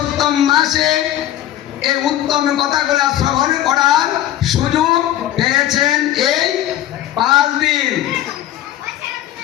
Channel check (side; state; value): right; quieter; 12.8 dB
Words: মাসে এই উত্তম কথাগুলো শ্রবণ করার সুযোগ পেয়েছেন এই 5 দিন।